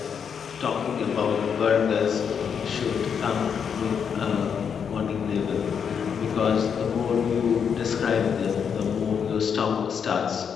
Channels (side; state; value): right; quieter; 7.1 dB